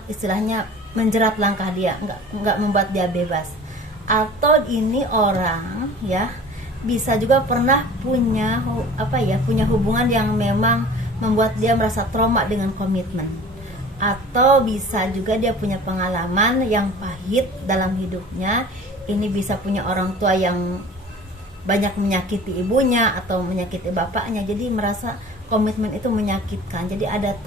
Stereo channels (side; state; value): both; normal; correlation 0.43